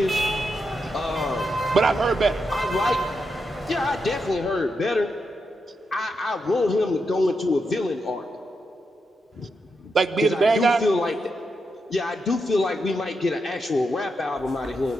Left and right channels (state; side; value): normal; both; correlation 0.84